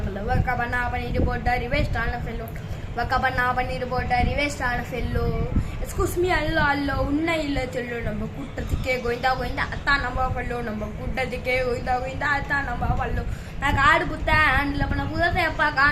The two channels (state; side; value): identical; both; correlation 1.00